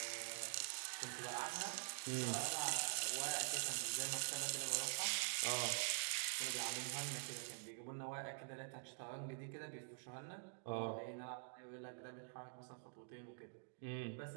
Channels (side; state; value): left; silent; digital silence